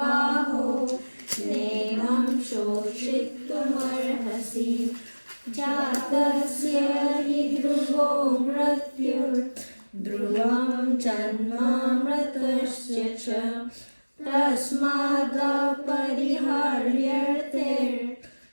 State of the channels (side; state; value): both; inverted; correlation -1.00